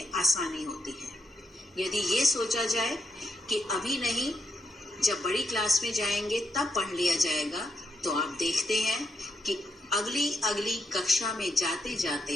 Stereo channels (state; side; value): normal; both; correlation 0.80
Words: आसानी होती है। यदि ये सोचा जाए कि अभी नहीं, जब बड़ी क्लास में जाएंगे तब पढ़ लिया जाएगा, तो आप देखते हैं कि अगली कक्षा में जाते